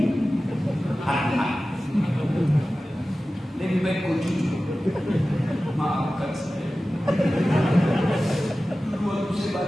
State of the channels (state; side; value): normal; both; correlation 0.95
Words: hati-hati. Lebih baik kau jujur. Maafkan saya. Dulu waktu saya